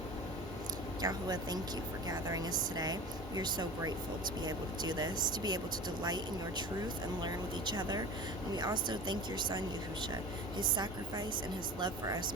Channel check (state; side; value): normal; both; correlation 0.36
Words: Yahuwah, thank you for gathering us today. We are so grateful to be able to do this, to be able to delight in your truth and learn with each other. And we also thank your son, Yahusha. His sacrifice and his love for us